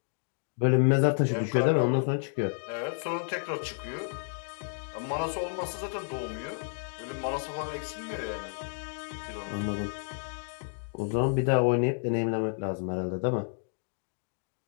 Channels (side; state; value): right; silent; digital silence